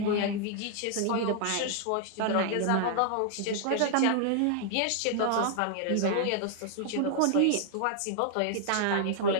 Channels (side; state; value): both; different; correlation 0.00